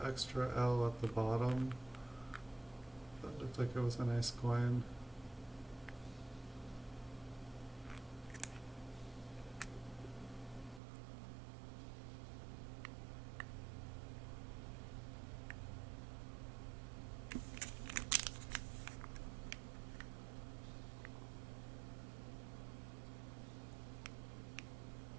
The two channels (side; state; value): left; drops out; at 10.8 s